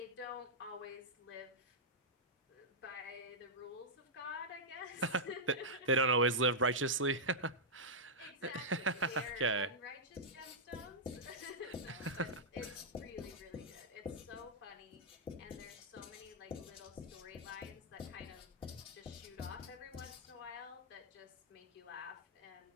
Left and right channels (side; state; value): both; normal; correlation -0.09